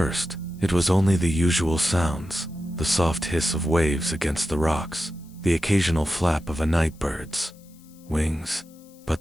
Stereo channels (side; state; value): left; noise; hiss, 28 dB below the sound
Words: it was only the usual sounds, the soft hiss of waves against the rocks, the occasional flap of a nightbird's wings.